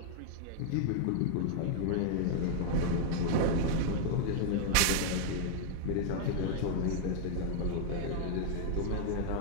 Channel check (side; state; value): both; different; correlation -0.01